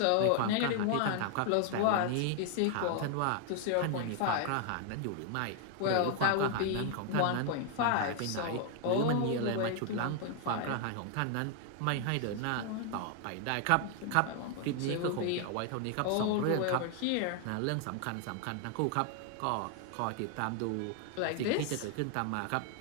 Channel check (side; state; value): both; different; correlation 0.00